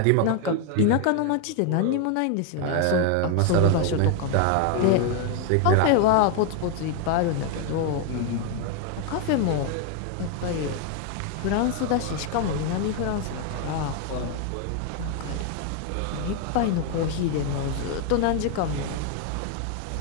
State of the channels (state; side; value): different; both; correlation 0.01